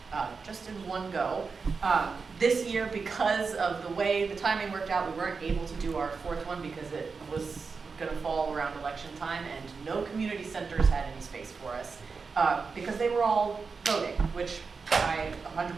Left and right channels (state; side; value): quieter; left; 4.9 dB